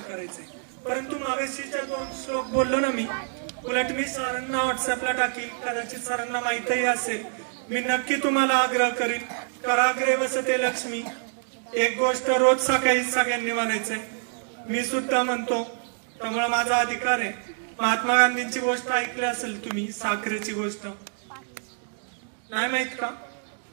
करायचंय. परंतु मागाशीच्या 2 श्लोक बोललो ना मी, उलट मी सरांना व्हॉट्सअपला टाकील, कदाचित सरांना माहितीही असेल. मी नक्की तुम्हाला आग्रह करीन, कराग्रे वसते लक्ष्मी. एक गोष्ट रोज सकाळी सगळ्यांनी म्हणायचंय, मी सुद्धा म्हणतो, त्यामुळे माझा अधिकार आहे. महात्मा गांधींची गोष्ट ऐकली असेल तुम्ही, साखरेची गोष्ट नाही माहित का?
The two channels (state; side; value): silent; left; 61 dB below the other